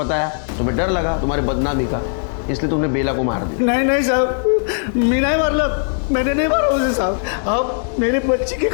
तुम्हें डर लगा तुम्हारी बदनामी का, इसलिए तुमने बेला को मार दिया। नहीं साहब, मैं नहीं मारला, मैंने नहीं मारा उसे साहब। आप मेरे बच्ची के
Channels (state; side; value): silent; right; digital silence